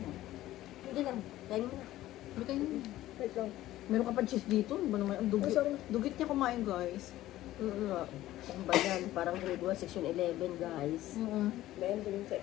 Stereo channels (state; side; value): quieter; right; 15.0 dB